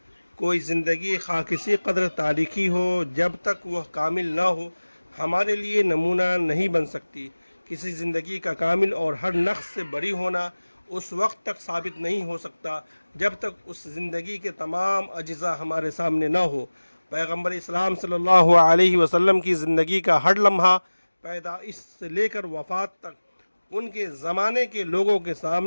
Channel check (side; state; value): both; inverted; correlation -1.00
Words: کوئی زندگی خواہ کسی قدر تاریخی ہو، جب تک وہ کامل نہ ہو ہمارے لیے نمونہ نہیں بن سکتی۔ کسی زندگی کا کامل اور ہر نقص سے بری ہونا اس وقت تک ثابت نہیں ہو سکتا جب تک اس زندگی کے تمام اجزاء ہمارے سامنے نہ ہو۔ پیغمبر اسلام صلی اللہ علیہ وسلم کی زندگی کا ہر لمحہ پیدائش سے لے کر وفات تک ان کے زمانے کے لوگوں کے